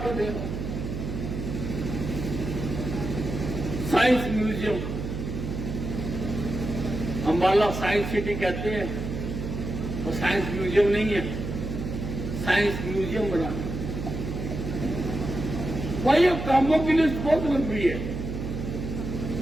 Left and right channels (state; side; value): noise; right; hum, 5 dB below the sound